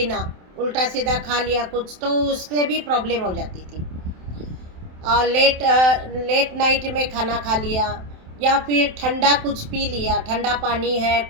उल्टा सीधा खा लिया कुछ तो उससे भी प्रॉब्लम हो जाती थी। लेट नाइट में खाना खा लिया या फिर ठंडा कुछ पी लिया, ठंडा पानी है,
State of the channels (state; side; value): late; left; 27 ms